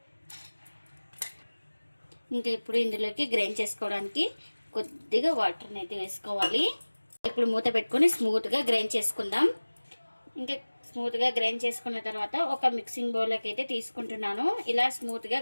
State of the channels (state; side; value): inverted; both; correlation -1.00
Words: ఇంకా ఇప్పుడు ఇందులోకి గ్రైండ్ చేసుకోవడానికి కొద్దిగా వాటర్ని అయితే వేసుకోవాలి. ఇప్పుడు మూత పెట్టుకొని స్మూత్గా గ్రైండ్ చేసుకుందాం. ఇంకా స్మూత్గా గ్రైండ్ చేసుకున్న తర్వాత ఒక మిక్సింగ్ బౌల్లోకి అయితే తీసుకుంటున్నాను. ఇలా స్మూత్గా